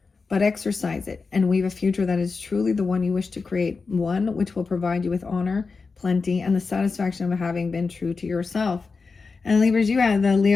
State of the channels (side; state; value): right; quieter; 4.5 dB